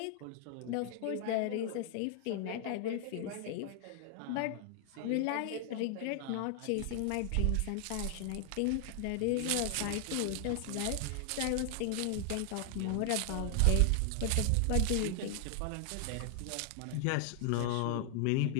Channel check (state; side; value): different; both; correlation 0.00